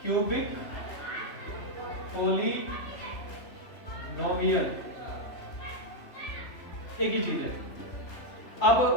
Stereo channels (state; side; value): late; right; 3.0 ms